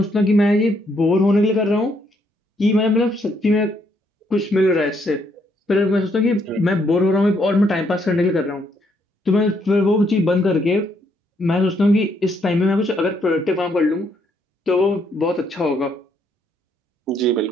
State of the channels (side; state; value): both; normal; correlation 0.72